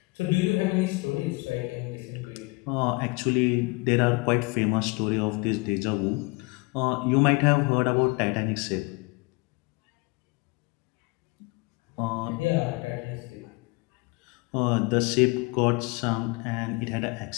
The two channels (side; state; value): right; quieter; 27.8 dB